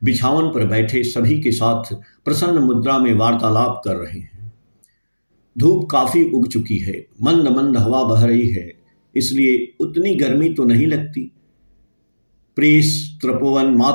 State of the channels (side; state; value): both; inverted; correlation -1.00